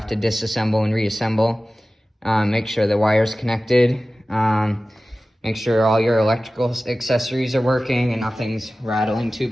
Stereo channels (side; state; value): both; normal; correlation 0.96